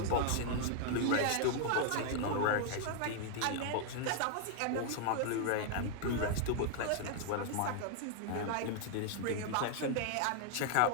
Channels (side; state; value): both; different; correlation 0.00